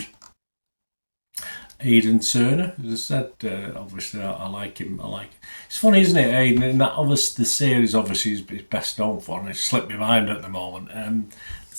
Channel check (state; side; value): inverted; both; correlation -1.00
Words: Aidan Turner, as I said, obviously I like him. It's funny, isn't it, Aidan? In that, obviously, the series obviously is best known for, and it's slipped my mind at the moment.